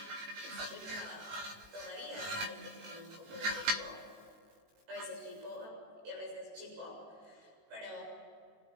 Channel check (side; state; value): left; late; 19 ms